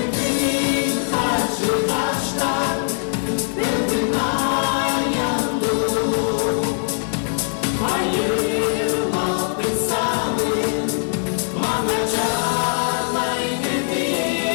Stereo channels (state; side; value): silent; right; 62 dB below the other